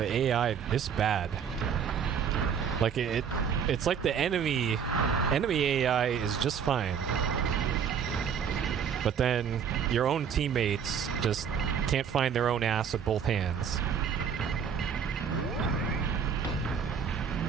AI this bad? Like, it's like the enemy AI is just fine, but then your own teammates just can't find their own ass with both hands.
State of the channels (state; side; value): quieter; left; 7.4 dB